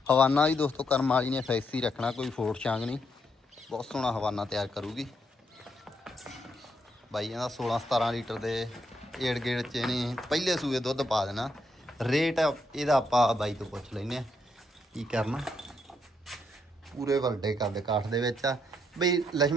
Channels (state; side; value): normal; both; correlation 0.77